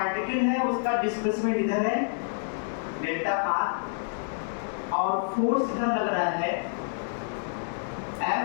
है, उसका डिस्प्लेसमेंट इधर है डेल्टा आर, और फोर्स इधर लग रहा है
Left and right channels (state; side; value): silent; right; 59 dB below the other